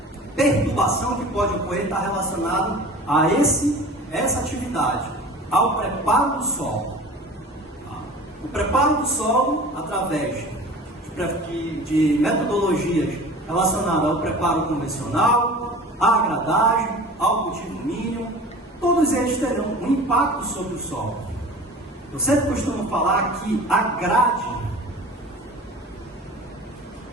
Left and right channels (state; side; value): normal; both; correlation 0.40